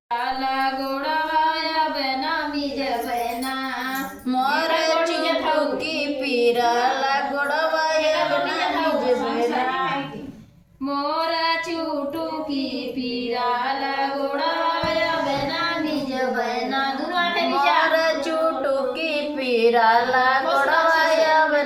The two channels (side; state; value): both; identical; correlation 1.00